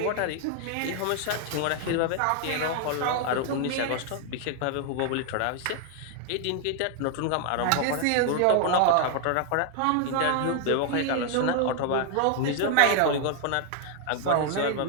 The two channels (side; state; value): both; different; correlation 0.00